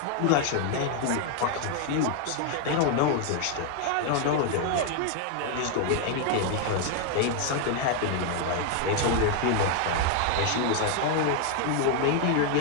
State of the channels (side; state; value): both; different; correlation 0.00